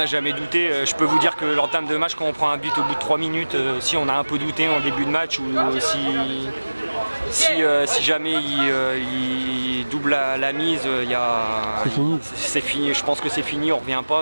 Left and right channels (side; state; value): both; inverted; correlation -1.00